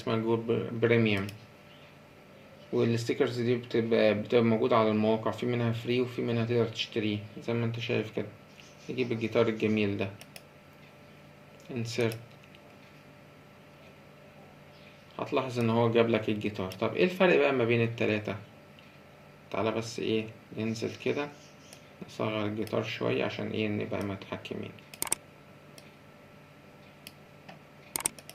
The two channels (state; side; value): identical; both; correlation 1.00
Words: جوجل بريميوم، والستيكرز دي بتبقى موجودة على المواقع، في منها فري وفي منها تقدر تشتريه زي ما انت شايف كده. تجيب الجيتار الجميل ده insert، هتلاحظ ان هو جاب لك الجيتار. طب ايه الفرق بقى ما بين التلاتة؟ تعالى بس ايه ننزل كده نصغر الجيتار شوية عشان ايه نبقى متحكمين.